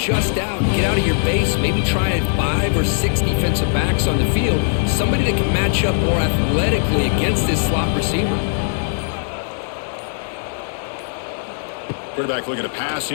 out, get out of your base, maybe try 5 or 6 defensive backs on the field, somebody that can match up more athletically against this slot receiver. Quarterback looking to pass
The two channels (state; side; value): silent; right; digital silence